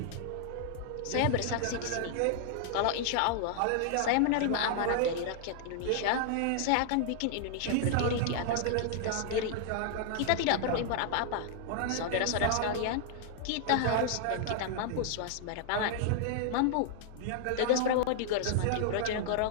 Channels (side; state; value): both; different; correlation -0.01